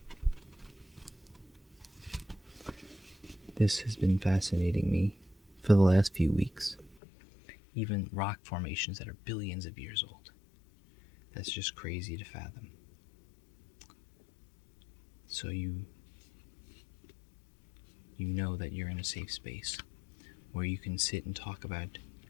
This has been fascinating me for the last few weeks. Even rock formations that are billions of years old. That's just crazy to fathom. So you know that you're in a safe space where you can sit and talk about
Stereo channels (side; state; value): right; drops out; at 7.0 s